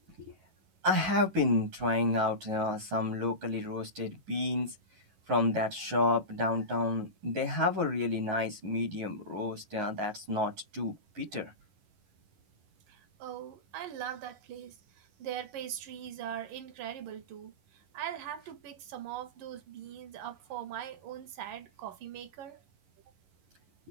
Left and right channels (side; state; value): left; late; 11 ms